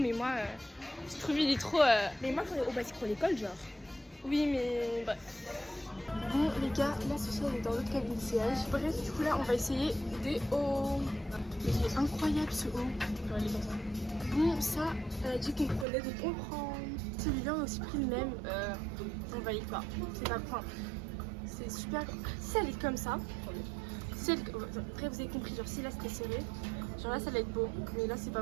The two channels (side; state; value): left; drops out; at 15.9 s